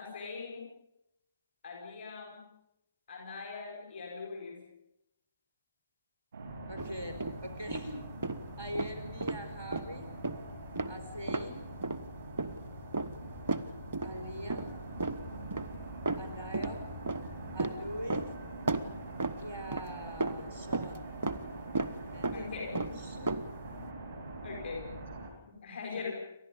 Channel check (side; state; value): both; inverted; correlation -0.69